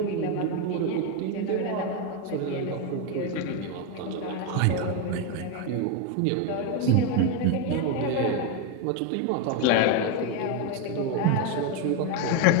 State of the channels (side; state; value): both; different; correlation 0.02